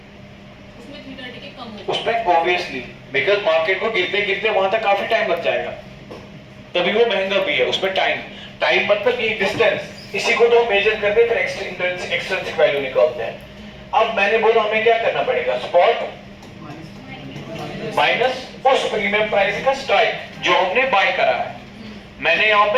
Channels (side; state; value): both; identical; correlation 1.00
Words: उसमें थीटा डी के कम होगा। उसमें ऑब्वियसली, बिकॉज मार्केट को गिरते गिरते वहां तक काफी टाइम लग जाएगा, तभी वो महंगा भी है। उसमें टाइम मतलब ये डिस्टेंस, इसी को तो मेजर करते फिर एक्सट्रिंसिक वैल्यू निकालते हैं। अब मैंने बोला हमें क्या करना पड़ेगा, स्पॉट माइनस उस प्रीमियम प्राइस का स्ट्राइक जो हमने बाय करा है। मैंने यहाँ